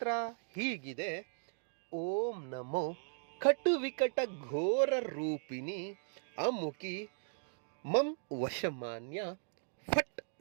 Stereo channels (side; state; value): left; silent; digital silence